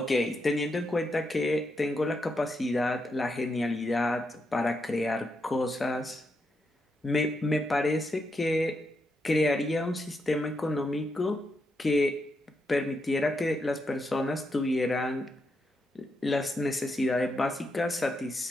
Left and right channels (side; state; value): both; normal; correlation 0.83